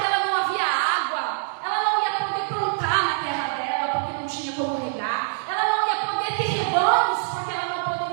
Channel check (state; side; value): silent; left; digital silence